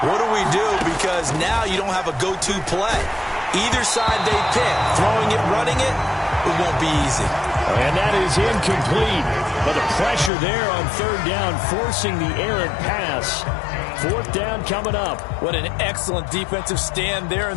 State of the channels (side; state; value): right; drops out; at 10.3 s